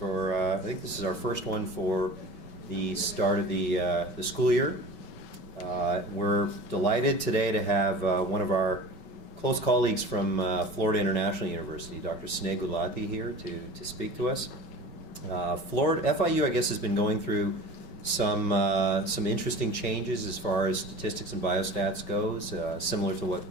I think this is our first one for the start of the school year. We're delighted today to have one of our close colleagues from Florida International University, Dr. Sneh Gulati, here to speak to us. FIU, I guess, has been going through some interesting changes as far as statistics and biostats goes, similar to what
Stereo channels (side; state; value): right; late; 5.3 ms